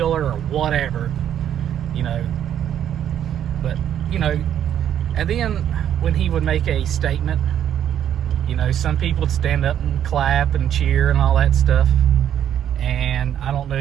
her or whatever, you know. But, you know, and then when he would make a statement, you know, some people would stand up and clap and cheer and all that stuff. And I don't know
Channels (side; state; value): left; quieter; 10.0 dB